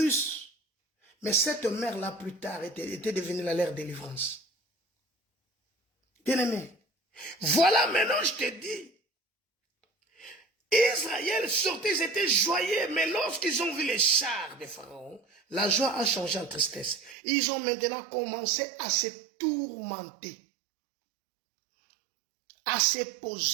Mais cette mer-là, plus tard, était devenue la mer de délivrance. Bien-aimé, voilà maintenant, je te dis, Israël sortait, ils étaient joyeux, mais lorsqu'ils ont vu les chars de Pharaon, la joie a changé en tristesse. Ils ont maintenant commencé à se tourmenter, à se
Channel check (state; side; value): drops out; left; at 17.2 s